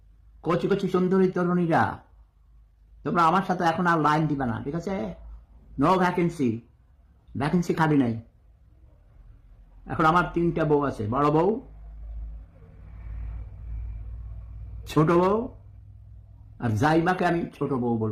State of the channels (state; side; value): identical; both; correlation 1.00